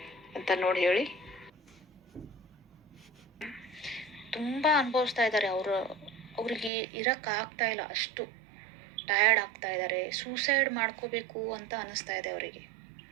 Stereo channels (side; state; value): left; drops out; at 6.7 s